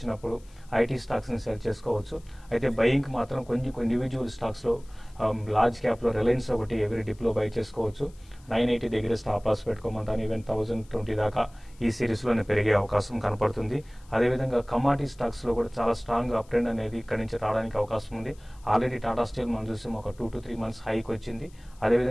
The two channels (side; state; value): left; noise; hiss, 29 dB below the sound